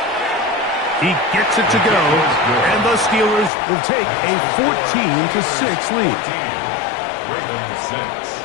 He gets it to go, and the Steelers will take a 14-6 lead. Ravens 6.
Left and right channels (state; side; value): drops out; right; at 3.5 s